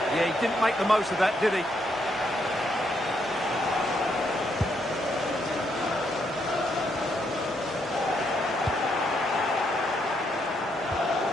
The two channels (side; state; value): both; normal; correlation 0.76